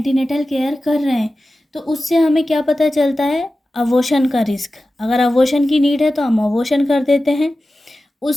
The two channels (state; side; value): normal; both; correlation 0.94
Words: केयर कर रहे हैं, तो उससे हमें क्या पता चलता है, अबॉर्शन का रिस्क। अगर अबॉर्शन की नीड है तो हम अबॉर्शन कर देते हैं।